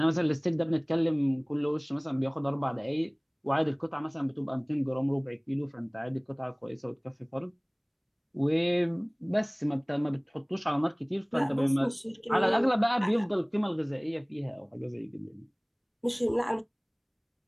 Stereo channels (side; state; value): both; identical; correlation 1.00